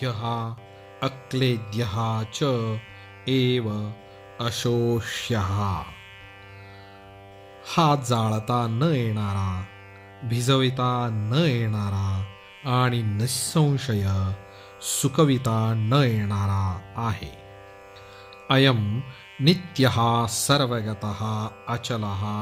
अक्लेद्यः च एव अशोष्यः, हा जाळता न येणारा, भिजविता न येणारा आणि निःसंशय सुकविता न येणारा आहे। अयम नित्यः सर्वगतः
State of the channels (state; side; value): identical; both; correlation 1.00